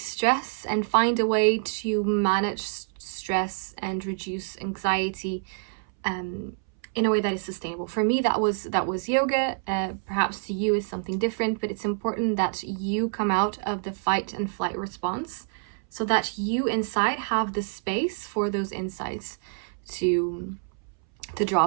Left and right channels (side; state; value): left; silent; 60 dB below the other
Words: stress and find a way to manage stress and reduce anxiety in a way that is sustainable. For me, that was yoga. Perhaps to you is something different, but it's important that you come out of the fight and flight response so that you inside have the space for those insights to